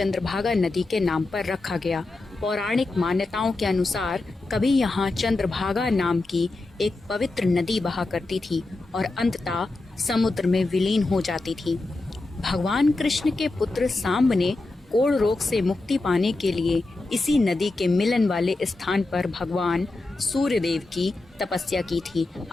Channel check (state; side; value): quieter; right; 3.1 dB